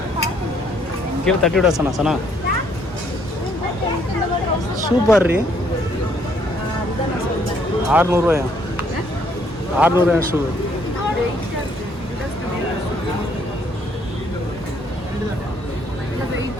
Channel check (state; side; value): normal; both; correlation 0.67